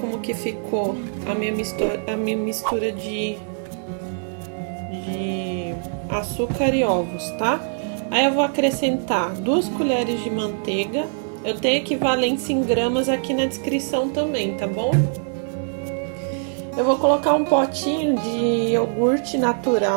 que ficou a minha mistura de açúcar e ovos, tá? Aí eu vou acrescentar 2 colheres de manteiga. Eu tenho equivalência em gramas aqui na descrição também, tá bom? Eu vou colocar um potinho de iogurte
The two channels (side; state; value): left; silent; 64 dB below the other